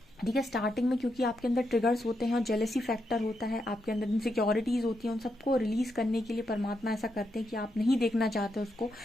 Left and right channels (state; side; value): normal; both; correlation 0.82